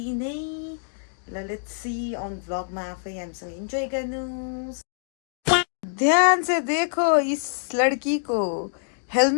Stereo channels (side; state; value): right; silent; digital silence